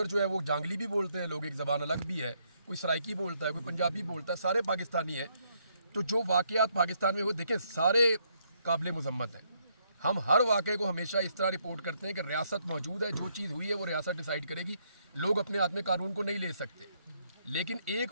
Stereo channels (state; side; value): inverted; both; correlation -0.73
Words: जो है वो जांगली भी बोलते हैं लोग, एक ज़बान अलग भी है, कोई सराइकी बोलता है, कोई पंजाबी बोलता है, सारे पाकिस्तानी हैं। तो जो वाक़यात पाकिस्तान में वो देखें सारे काबिल मुज़म्मत हैं। हम हर वाक़े को हमेशा इस तरह रिपोर्ट करते हैं कि रियासत मौजूद है, जो चीज़ हुई है वो रियासत डिसाइड करेगी, लोग अपने हाथ में कानून को नहीं ले सकते। لیکن